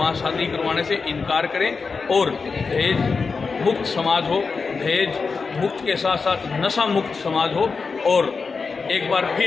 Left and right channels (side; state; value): right; quieter; 4.8 dB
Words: शादी करवाने से इनकार करें और दहेज मुक्त समाज हो, दहेज मुक्त के साथ साथ नशा मुक्त समाज हो और एक बार